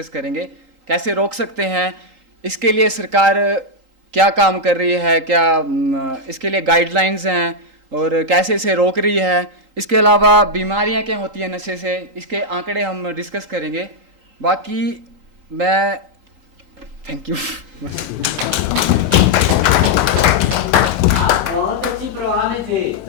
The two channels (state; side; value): late; left; 3.8 ms